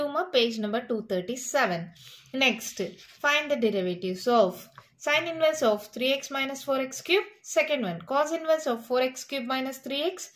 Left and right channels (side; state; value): both; identical; correlation 1.00